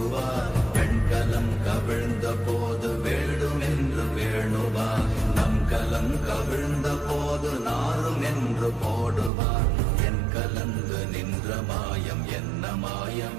பெண்கலம் கவிழ்ந்த போது வேடும் என்று வேணுவார், நம் கலம் கவிழ்ந்த போது நாரும் என்று போடுவார். என் கலந்து நின்ற மாயம் என்ன மாயம்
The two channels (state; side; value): drops out; left; at 9.3 s